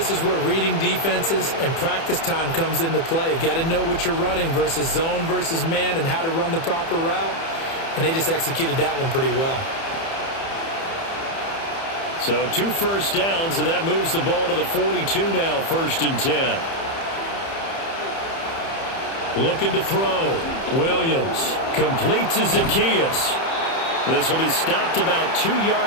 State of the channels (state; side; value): late; right; 30 ms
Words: is where reading defenses and practice time comes into play. You've got to know what you're running versus zone versus man and how to run the proper route. And they just executed that one pretty well. So 2 first downs, and that moves the ball to the 42 now, 1st and 10. Looking to throw. Williams completes to Zacchaeus. This will be stopped about 2